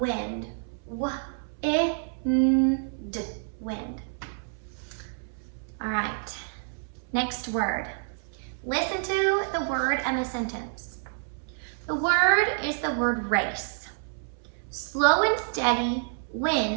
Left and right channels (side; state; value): left; silent; 59 dB below the other